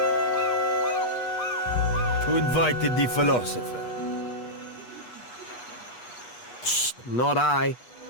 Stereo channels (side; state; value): right; late; 8.2 ms